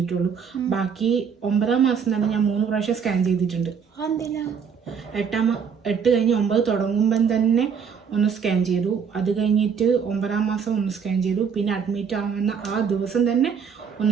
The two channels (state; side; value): quieter; left; 6.6 dB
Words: ബാക്കി 9ാം മാസം തന്നെ ഞാൻ 3 പ്രാവശ്യം സ്കാൻ ചെയ്തിട്ടുണ്ട്. 8 കഴിഞ്ഞ് 9 തുടങ്ങുമ്പം തന്നെ ഒന്ന് സ്കാൻ ചെയ്തു. അത് കഴിഞ്ഞിട്ട് 9ാം മാസം ഒന്ന് സ്കാൻ ചെയ്തു. പിന്നെ അഡ്മിറ്റ് ആവുന്ന ആ ദിവസം തന്നെ